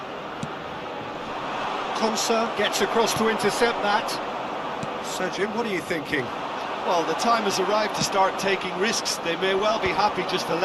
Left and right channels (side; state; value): both; identical; correlation 1.00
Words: Konsa gets across to intercept that. So, Jim, what are you thinking? Well, the time has arrived to start taking risks. They may well be happy just to